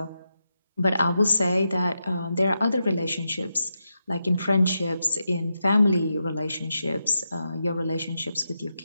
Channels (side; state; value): both; inverted; correlation -0.86